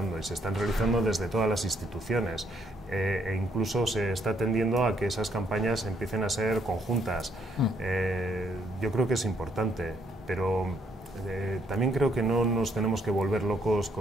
desde todas las instituciones e incluso se está tendiendo a que esas campañas empiecen a ser conjuntas. Yo creo que es importante, pero también creo que no nos tenemos que volver locos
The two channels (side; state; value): both; normal; correlation 0.71